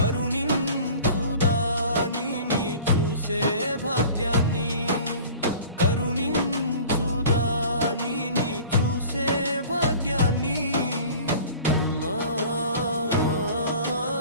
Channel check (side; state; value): both; inverted; correlation -0.43